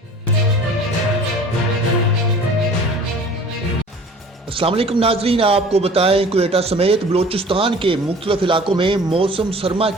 अस्सलाम वालेकुम नाजरीन, आपको बताएं क्वेटा समेत बलोचिस्तान के मुख्तलिफ इलाकों में मौसम सरमा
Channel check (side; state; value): both; normal; correlation 0.46